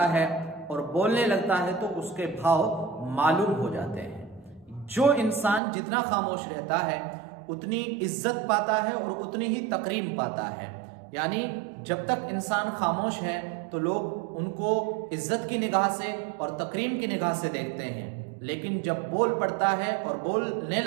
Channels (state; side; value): drops out; left; at 5.6 s